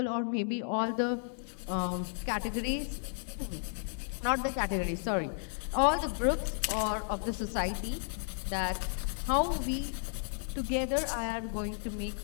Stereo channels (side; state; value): right; silent; 56 dB below the other